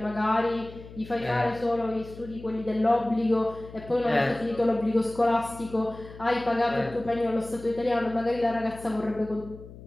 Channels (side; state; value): left; noise; hum, 17 dB below the sound